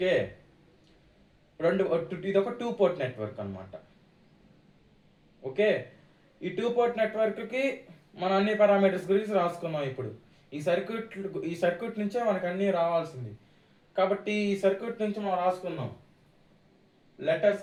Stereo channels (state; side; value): identical; both; correlation 1.00